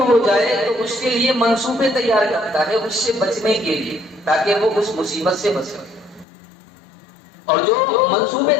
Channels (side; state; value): right; drops out; at 6.2 s